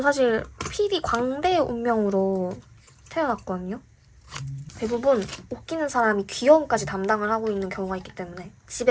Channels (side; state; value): both; identical; correlation 1.00